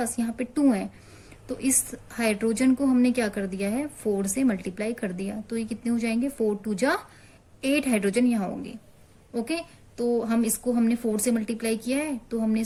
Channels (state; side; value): identical; both; correlation 1.00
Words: यहाँ पे 2 है। तो इस हाइड्रोजन को हमने क्या कर दिया है 4 से मल्टीप्लाई कर दिया। तो ये कितने हो जाएंगे 4 2 जा 8 हाइड्रोजन यहाँ होंगे। ओके, तो हम इसको हमने 4 से मल्टीप्लाई किया है, तो हमने